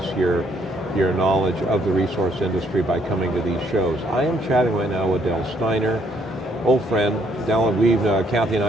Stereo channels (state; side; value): normal; both; correlation 0.68